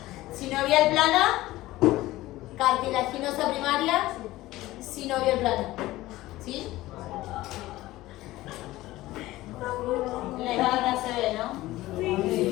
sinovial plana, cartilaginosa primaria, sinovial plana. ¿Sí? La imagen se ve, ¿no?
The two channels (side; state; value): right; quieter; 17.2 dB